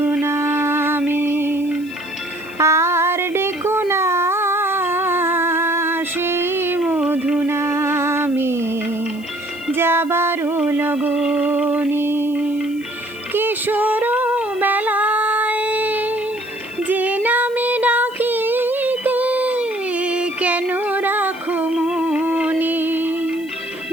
নামে, আর ডেকো না সেই মধু নামে, যাবারও লগনে। কিশোর বেলায় যে নামে ডাকিতে কেন রাখো মনে,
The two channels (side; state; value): right; noise; hiss, 26 dB below the sound